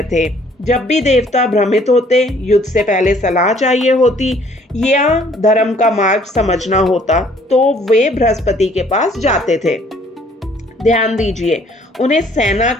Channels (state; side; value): normal; both; correlation 0.60